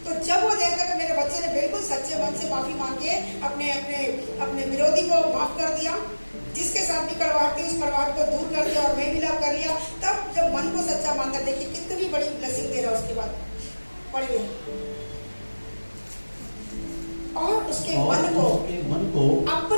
तो जब वो देखता है कि मेरे बच्चे ने बिल्कुल सच्चे मन से माफी मांग के अपने अपने अपने विरोधी को माफ कर दिया, जिसके साथ भी कड़वाहट थी उस कड़वाहट को दूर कर दिया और मेल मिलाप कर लिया, तब जब मन को सच्चा मानता, देखिए कितनी बड़ी ब्लेसिंग दे रहा है उसके बाद। पढ़िए, और उसके मन को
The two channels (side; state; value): both; inverted; correlation -1.00